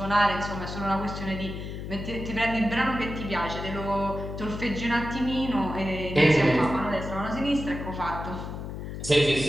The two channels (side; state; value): left; noise; hum, 7 dB below the sound